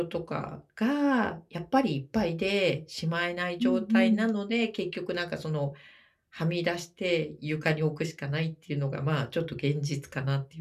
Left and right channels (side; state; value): both; identical; correlation 1.00